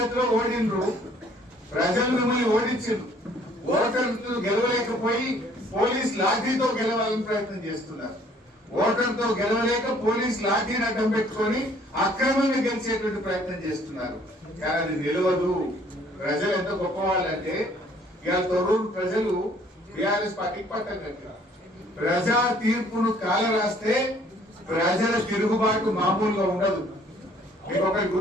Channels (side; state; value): both; normal; correlation 0.59